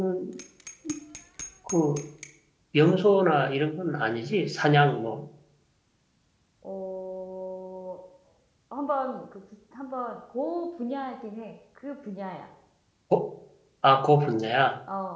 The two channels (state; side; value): identical; both; correlation 1.00